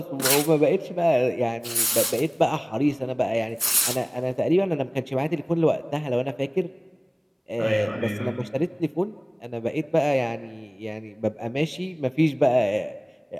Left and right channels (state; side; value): identical; both; correlation 1.00